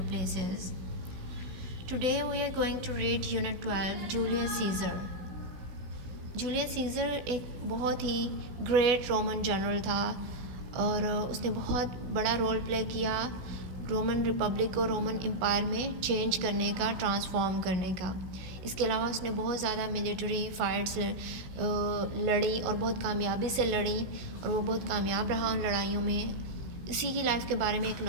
places. Today we are going to read Unit 12, Julius Caesar. Julius Caesar एक बहुत ही great Roman general था और उसने बहुत बड़ा role play किया Roman Republic को Roman empire में चेंज करने का, ट्रांसफॉर्म करने का। इसके अलावा उसने बहुत ज़्यादा मिलिट्री फाइट्स लड़ी और बहुत कामयाबी से लड़ी और वो बहुत कामयाब रहा उन लड़ाइयों में। इसी की लाइफ के बारे में एक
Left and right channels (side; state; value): left; late; 16 ms